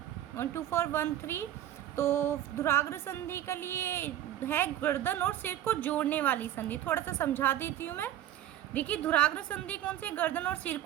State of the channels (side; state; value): left; quieter; 12.0 dB